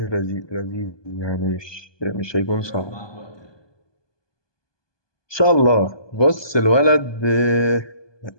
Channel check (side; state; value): right; late; 1.2 ms